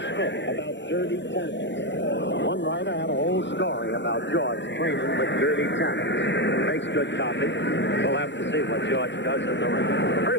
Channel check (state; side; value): late; right; 0.53 ms